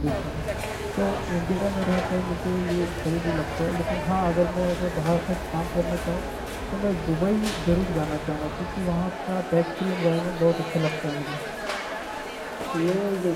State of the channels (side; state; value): both; identical; correlation 1.00